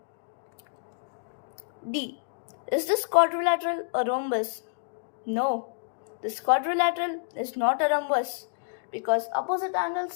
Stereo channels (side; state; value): right; silent; digital silence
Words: D. Is this quadrilateral a rhombus? No. This quadrilateral is not a rhombus because opposite